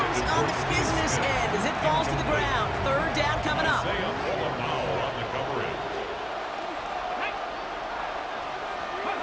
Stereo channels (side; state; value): both; identical; correlation 1.00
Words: on the business end as it falls to the ground. Third down coming up.